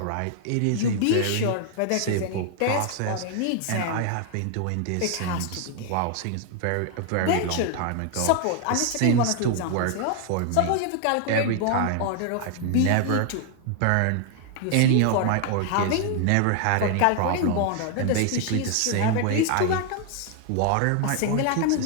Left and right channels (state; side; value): different; both; correlation 0.00